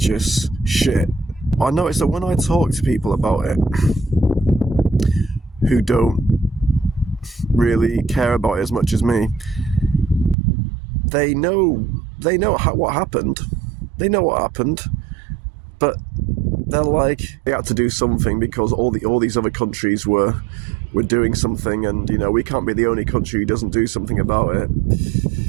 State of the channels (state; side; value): drops out; left; at 10.4 s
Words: shit. I noticed that when I talk to people about it who don't really care about it as much as me, they know what happened. They know what happened, but they're like, they had to do something because all these other countries were doing something, and you know, we can't be the only country who doesn't do something about it.